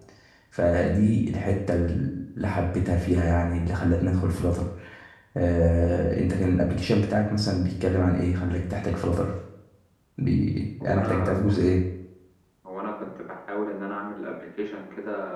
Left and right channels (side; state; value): both; identical; correlation 1.00